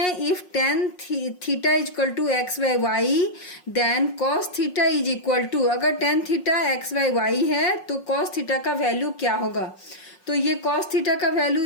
If tan theta is equal to x by y then cos theta is equal to, अगर tan theta x by y है तो कॉस थीटा का वैल्यू क्या होगा। तो ये कॉस थीटा का वैल्यू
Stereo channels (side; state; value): right; late; 5.5 ms